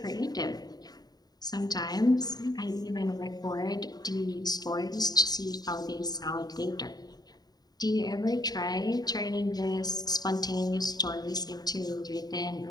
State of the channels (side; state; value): right; late; 0.19 ms